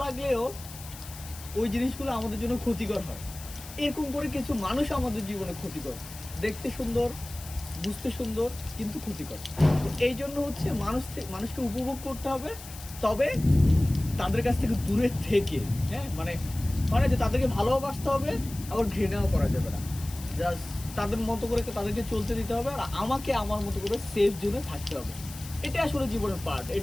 লাগলেও ওই জিনিসগুলো আমাদের জন্য ক্ষতিকর হয়। এরকম করে কিছু মানুষ আমাদের জীবনে ক্ষতিকর, দেখতে সুন্দর, বুঝতে সুন্দর, কিন্তু ক্ষতিকর। তো এই জন্য হচ্ছে মানুষকে উপভোগ করতে হবে, তবে তাদের কাছ থেকে দূরে থেকে। হ্যাঁ, মানে মানে যে তাদেরকে ভালোবাসতে হবে, আবার ঘৃণাও করা যাবে না। জাস্ট তাদের মতো করে তাদেরকে চলতে দিতে হবে, আর আমাকে আমার মতো করে সেফ জোনে থাকতে হবে। এটা আসলে জীবনের পার্ট,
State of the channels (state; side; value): noise; left; hiss, 15 dB below the sound